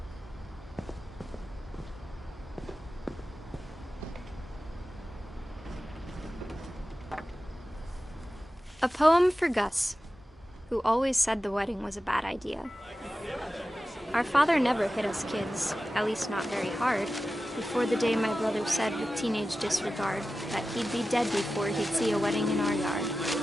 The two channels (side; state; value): both; normal; correlation 0.94